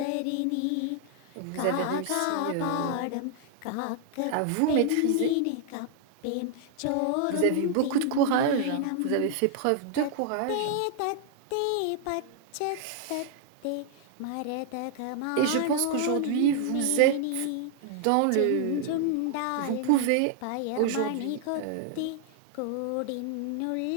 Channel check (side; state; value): both; different; correlation 0.00